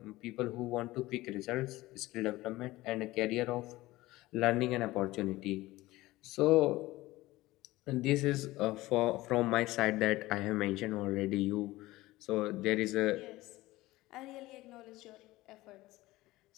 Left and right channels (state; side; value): quieter; right; 18.4 dB